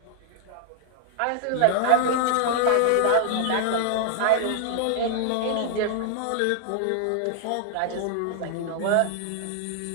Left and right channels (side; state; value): both; different; correlation -0.01